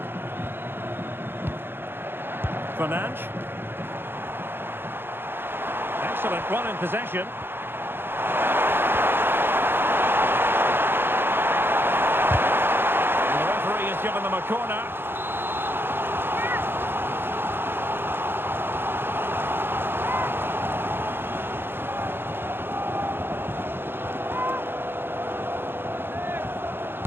Fernandes. Excellent run in possession. And the referee has given them a corner.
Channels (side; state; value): left; late; 0.10 ms